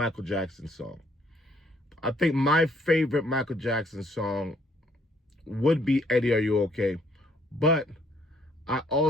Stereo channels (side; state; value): both; normal; correlation 0.66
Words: Jackson song. I think my favorite Michael Jackson song would be Eddie, Are You Okay? But I